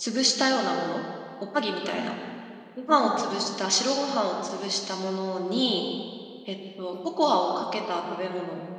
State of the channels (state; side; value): identical; both; correlation 1.00